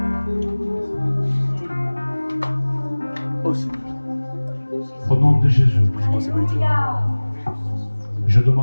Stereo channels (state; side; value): inverted; both; correlation -1.00